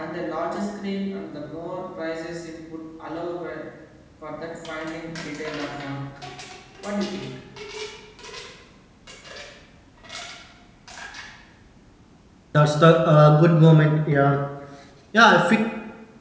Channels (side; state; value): both; identical; correlation 1.00